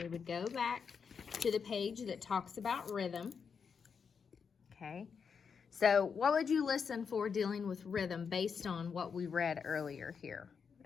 would go back to the page that talks about rhythm. Okay, so what would you listen for dealing with rhythm based on what we read earlier here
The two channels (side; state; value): right; quieter; 6.2 dB